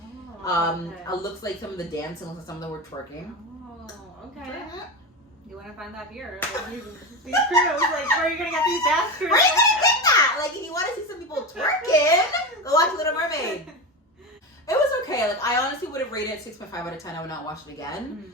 It looks like some of the dancing looks like some of them were twerking. Oh, okay. You want to find that here? Like, these crews, like, where are you gonna get these dance crews? Where are you gonna get that? Like, if you want to see some people twerking, go watch Little Mermaid. It was okay. Like, I honestly would have rated it 6.5 out of 10. I would not watch it again.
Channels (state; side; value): normal; both; correlation 0.20